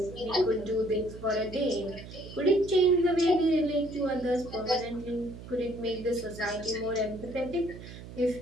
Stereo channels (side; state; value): right; noise; hum, 14 dB below the sound